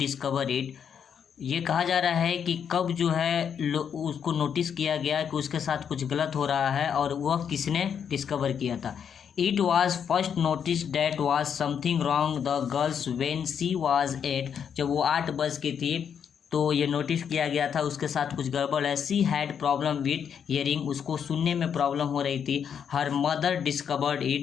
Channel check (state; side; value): quieter; right; 7.7 dB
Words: it। ये कहा जा रहा है कि कब जो है उसको नोटिस किया गया कि उसके साथ कुछ गलत हो रहा है और वह किसने डिस्कवर किया था। It was first notice that was something wrong the girls when she was 8, जब वो 8 वर्ष की थी तो ये नोटिस किया गया था उसके साथ कुछ गड़बड़ है। She had problem with hearing, उसको सुनने में प्रॉब्लम हो रही थी। हर मदर डिस्कवर्ड